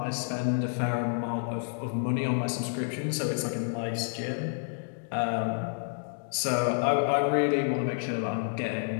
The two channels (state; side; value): silent; right; digital silence